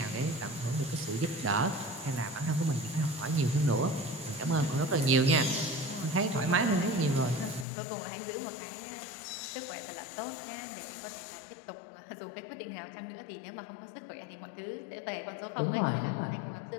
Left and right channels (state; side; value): drops out; right; at 7.7 s